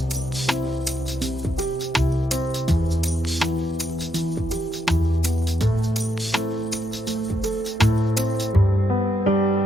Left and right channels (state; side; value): normal; both; correlation 0.78